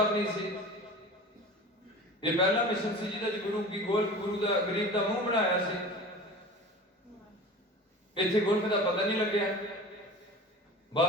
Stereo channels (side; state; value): both; normal; correlation 0.36